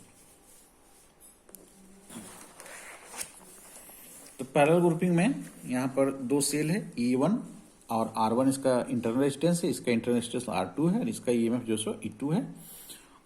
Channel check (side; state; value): both; identical; correlation 1.00